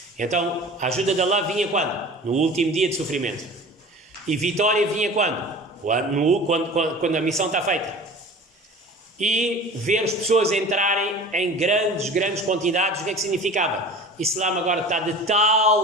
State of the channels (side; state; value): both; normal; correlation 0.39